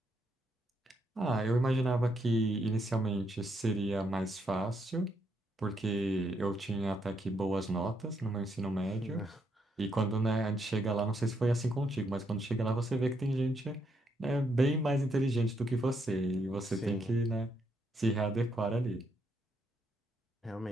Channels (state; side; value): normal; both; correlation 0.76